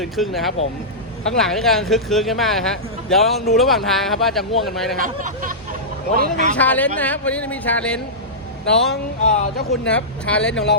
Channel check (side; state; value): both; normal; correlation -0.15